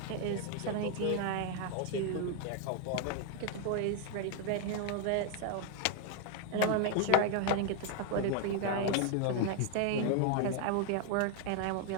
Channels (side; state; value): both; different; correlation 0.00